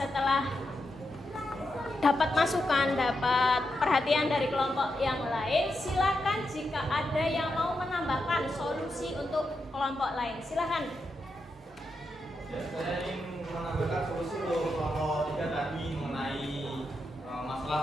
dapat masukan, dapat perhatian dari kelompok yang lain, silakan jika ada yang mau menambahkan solusi untuk kelompok lain, silakan. Ya, saya ingin menambahkan solusi untuk kelompok 3 tadi mengenai masalah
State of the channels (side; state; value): both; normal; correlation 0.86